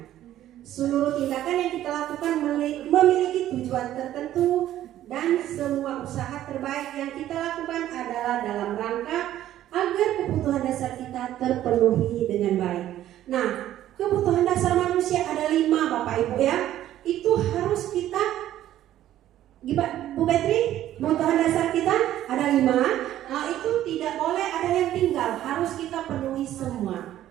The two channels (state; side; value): quieter; left; 12.7 dB